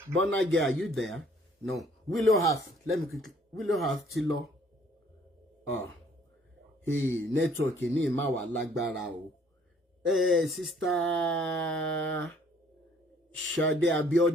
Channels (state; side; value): normal; both; correlation 0.59